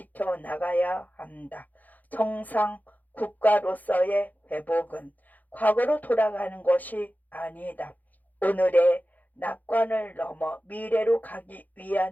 한다. 정상 국가로서의 회복은 과거로 돌아가는 것이 아니다. 오늘의 낙관을 넘어 미래로 가기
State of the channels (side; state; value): right; late; 0.081 ms